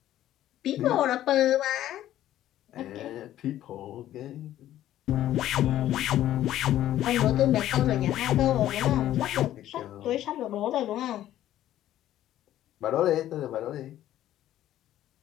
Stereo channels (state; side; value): quieter; right; 12.9 dB